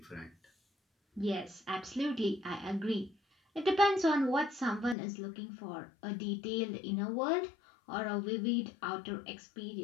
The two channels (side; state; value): right; drops out; at 5.0 s